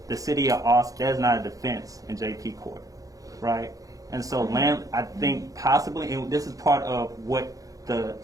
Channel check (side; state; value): left; late; 0.17 ms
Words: the city of Austin, there's not a defense in JP court, right? And so I think possibly, and this is part of what